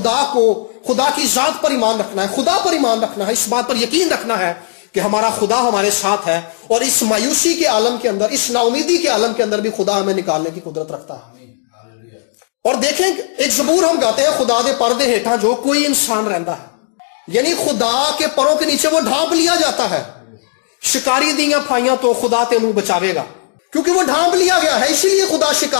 کی ذات پر ایمان رکھنا ہے، خدا پر ایمان رکھنا ہے، اس بات پر یقین رکھنا ہے کہ ہمارا خدا ہمارے ساتھ ہے، اور اس مایوسی کے عالم کے اندر، اس نا امیدی کے عالم کے اندر بھی خدا ہمیں نکالنے کی قدرت رکھتا ہے. اور دیکھیں ایک زبور ہم گاتے ہیں، خدا دے پردے ہیٹھاں جو کوئی انسان رہندا ہے، یعنی خدا کے پروں کے نیچے وہ ڈھانپ لیا جاتا ہے. شکاری دیاں پھائیاں تو خدا تینوں بچاوے گا، کیونکہ وہ ڈھانپ لیا گیا ہے، اسی لیے خدا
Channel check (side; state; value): right; silent; digital silence